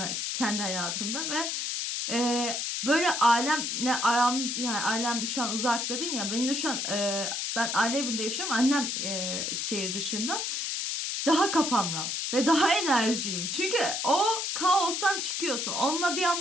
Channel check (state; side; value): noise; left; hiss, 2 dB below the sound